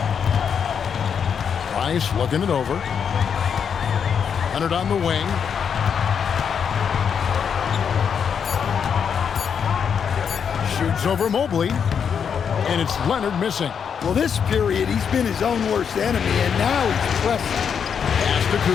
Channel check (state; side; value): quieter; right; 7.2 dB